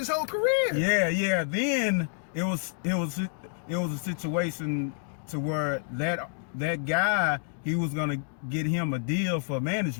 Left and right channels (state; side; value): silent; right; digital silence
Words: whole career. Yeah. Then it was a situation to where that guy, he was gonna get him a deal for